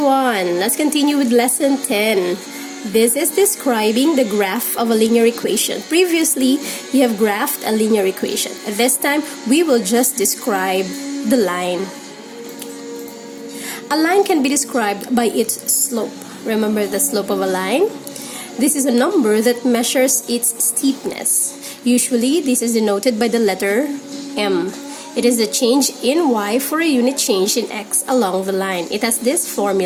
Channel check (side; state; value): both; identical; correlation 1.00